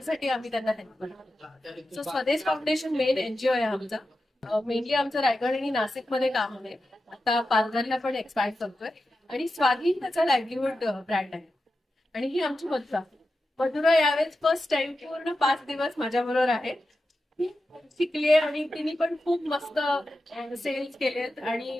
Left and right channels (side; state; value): both; normal; correlation 0.91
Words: आम्ही त्यांना हेल्प करतो. सो स्वदेश फाउंडेशन मेन एनजीओ आहे आमचा. मेनली आमचं रायगड आणि नाशिकमध्ये काम आहे. आता पालघरला पण एक्सपॅन्ड करतोय आणि स्वाधीन त्याचा लाईव्हलीहूड ब्रँड आहे. आणि ही आमची मधुरा यावेळेस फर्स्ट टाइम पूर्ण 5 दिवस माझ्याबरोबर आहे. शिकलीये आणि तिने पण खूप मस्त सेल्स केलेत आणि